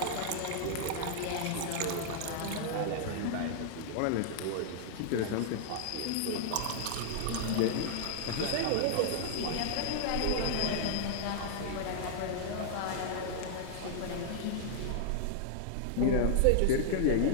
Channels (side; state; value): both; different; correlation -0.01